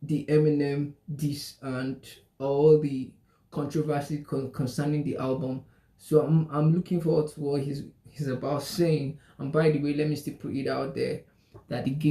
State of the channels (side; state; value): both; identical; correlation 1.00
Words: the Eminem diss and all the controversy concerning the album. So I'm looking forward to what he's about saying. And by the way, let me still put it out there that the